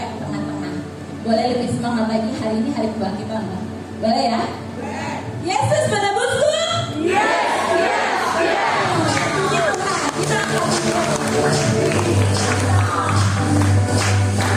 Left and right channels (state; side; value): identical; both; correlation 1.00